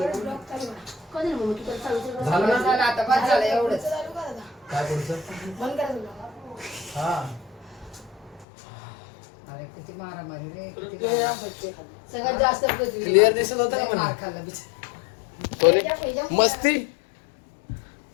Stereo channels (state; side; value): drops out; right; at 8.5 s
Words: चालू करा. झालं ना झालं आता बस झालं एवढंच. चालू करा आता. काय पुढचं बंद करा ब्लॉग. हा अरे किती मारामारी रे किती मारामारी. सगळ्यात जास्त पृथ्वी. क्लिअर दिसत होतं का लय मला? मार खाल्ला बिचारा. कोणी मस्ती